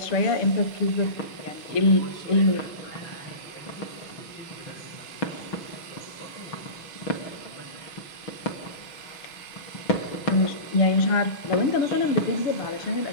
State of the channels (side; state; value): right; late; 6.2 ms